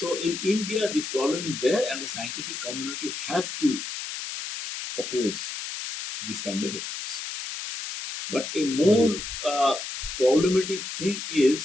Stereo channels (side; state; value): left; noise; hiss, 7 dB below the sound